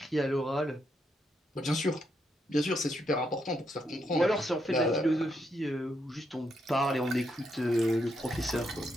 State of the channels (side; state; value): both; normal; correlation 0.79